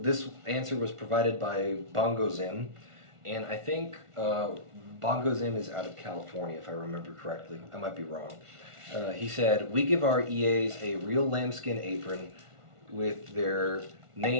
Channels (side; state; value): left; late; 1.4 ms